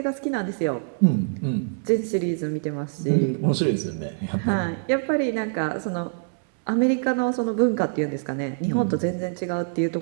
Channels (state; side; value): silent; left; 62 dB below the other